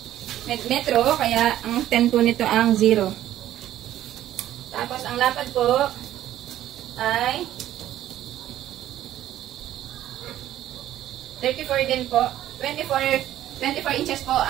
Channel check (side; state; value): left; quieter; 12.8 dB